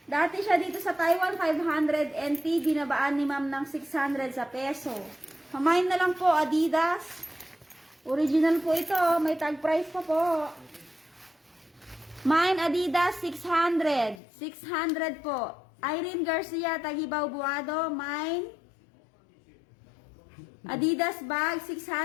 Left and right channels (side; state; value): right; drops out; at 14.2 s